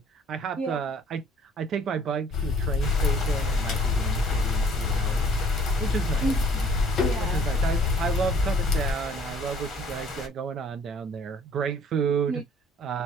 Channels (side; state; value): both; normal; correlation 0.55